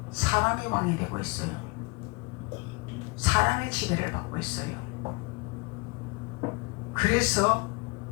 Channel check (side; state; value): right; quieter; 29.0 dB